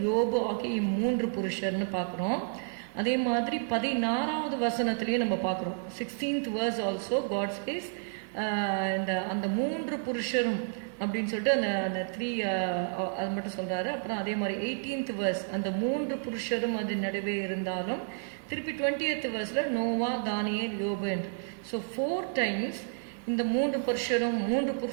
யோபு ஆகிய 3 புருஷர்னு பார்க்குறோம். அதே மாதிரி 16வது வசனத்திலேயே நம்ம பார்க்குறோம். 16th verse also God says அந்த 3 புருஷரும் அப்படின்னு சொல்லிட்டு அந்த 3 அது மட்டும் சொல்றாரு. அப்புறம் அதே மாதிரி 18th verse அந்த 3 புருஷரும் அது நடுவே இருந்தாலும் திருப்பி 20th verseல நோவா, தானியேல், யோபு என்று. ஸோ 4 times இந்த 3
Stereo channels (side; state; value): left; silent; digital silence